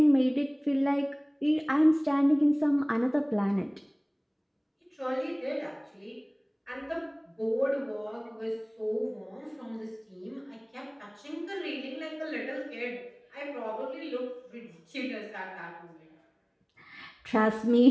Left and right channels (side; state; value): both; identical; correlation 1.00